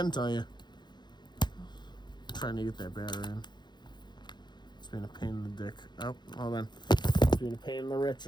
tell you, I'm trying to get that battery in. It's being a pain in the dick. Oh, hold on. It's being a pain in the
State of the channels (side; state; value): right; late; 0.21 ms